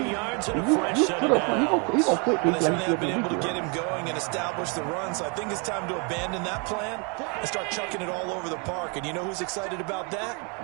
yards and a fresh set of downs. They certainly have been able to get him going and establish the run, so I think it's time to abandon that plan and start chucking it all over the park. And you know who's excited about that?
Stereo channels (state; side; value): quieter; left; 34.1 dB